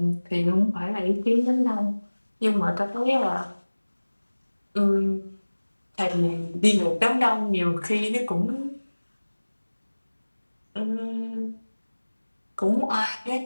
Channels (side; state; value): both; inverted; correlation -1.00